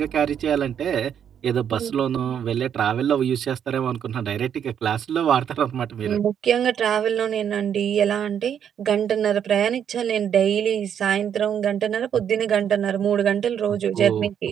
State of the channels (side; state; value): left; quieter; 8.7 dB